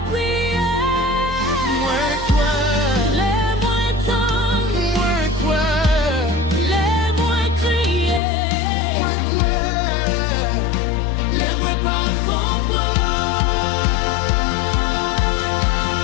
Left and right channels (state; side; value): drops out; right; at 8.2 s